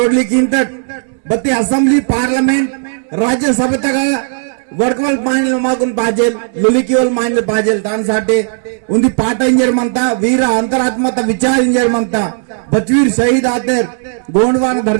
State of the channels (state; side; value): silent; left; digital silence